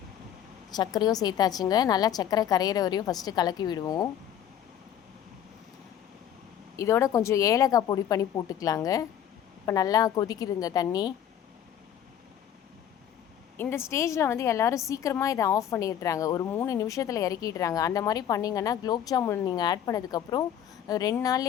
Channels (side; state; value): right; quieter; 9.9 dB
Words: சர்க்கரையும் சேர்த்தாச்சுங்க. நல்லா சர்க்கரை கரையிற வரையும் ஃபஸ்ட்டு கலக்கி விடுவோம். இதோட கொஞ்சம் ஏலக்காய் பொடி பண்ணி போட்டுக்கலாங்க. இப்போ நல்லா கொதிக்குதுங்க தண்ணி. இந்த ஸ்டேஜில் வந்து எல்லோரும் சீக்கிரமாக இதை ஆஃப் பண்ணிடுறாங்க. ஒரு 3 நிமிஷத்தில் இறக்கிடுறாங்க. அந்த மாதிரி பண்ணிங்கன்னா குலோப் ஜாமுன் நீங்கள் ஆட் பண்ணதுக்கப்புறம் 2